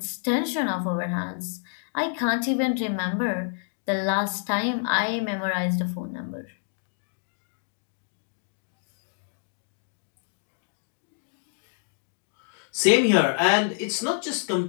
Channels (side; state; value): right; silent; digital silence